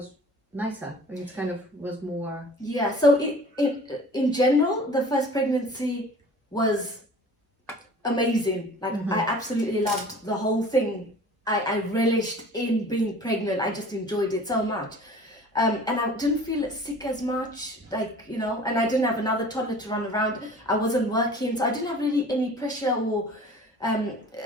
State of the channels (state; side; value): normal; both; correlation 0.45